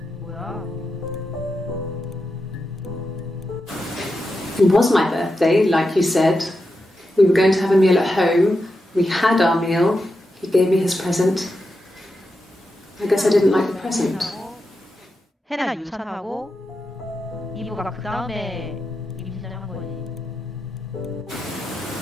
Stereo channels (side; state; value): both; normal; correlation 0.88